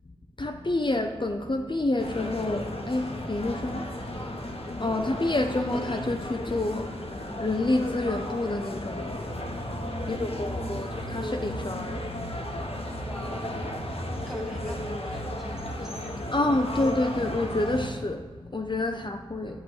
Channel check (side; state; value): both; normal; correlation 0.77